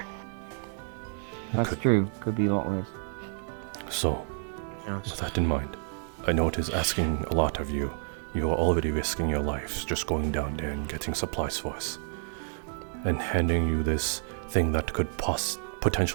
That's true. Could be a lot worse. So, with that in mind, I know it is asking a lot of you. You are already risking your lives just going down there and getting supplies for us. And handing you this thing that could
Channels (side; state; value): left; silent; 58 dB below the other